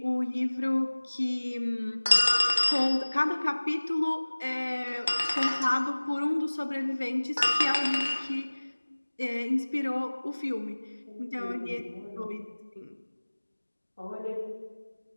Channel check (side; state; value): both; inverted; correlation -1.00